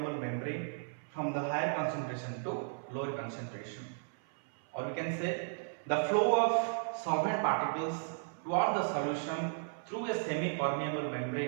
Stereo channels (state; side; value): silent; left; 54 dB below the other